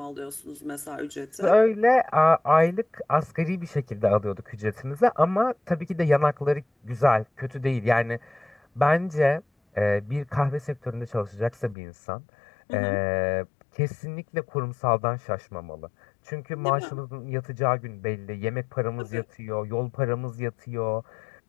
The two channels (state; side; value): drops out; right; at 11.8 s